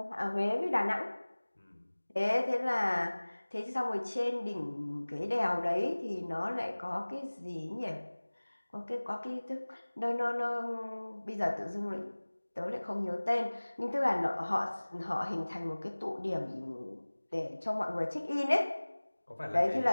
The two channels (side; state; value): both; inverted; correlation -1.00